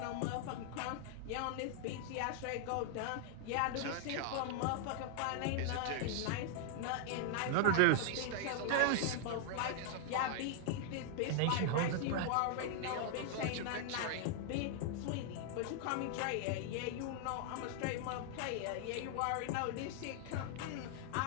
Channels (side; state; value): both; different; correlation 0.00